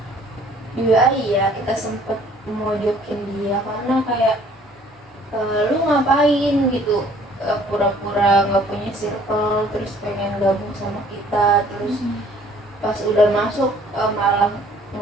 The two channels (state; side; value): normal; both; correlation 0.57